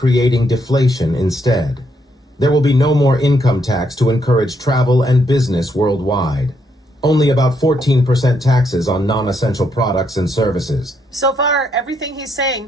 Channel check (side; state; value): both; normal; correlation 0.76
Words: deflation instead. There will be no more income tax to encourage travel and business worldwide. Only about 14% taxes on non-essential products and services. So far, everything he's